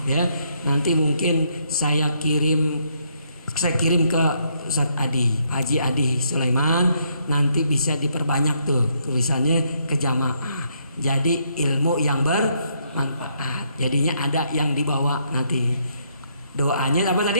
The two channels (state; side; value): inverted; both; correlation -0.73